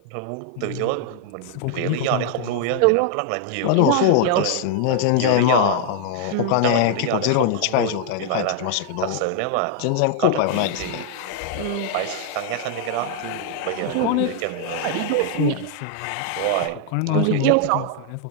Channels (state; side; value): different; both; correlation 0.00